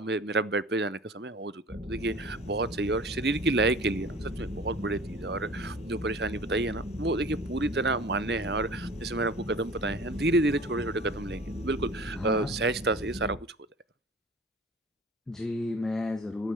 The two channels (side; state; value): both; normal; correlation 0.43